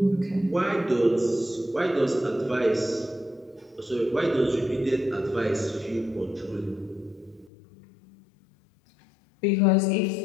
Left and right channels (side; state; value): right; drops out; at 7.5 s